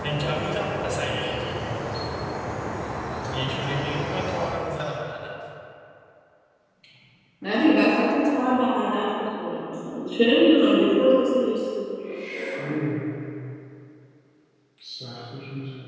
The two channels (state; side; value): identical; both; correlation 1.00